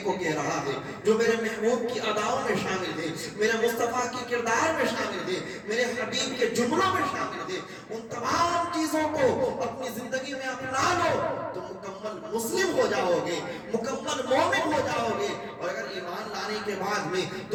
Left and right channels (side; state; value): both; identical; correlation 1.00